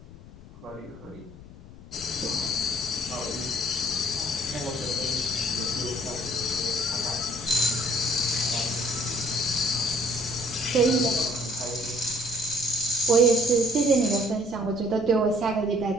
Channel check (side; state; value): left; noise; rumble, 18 dB below the sound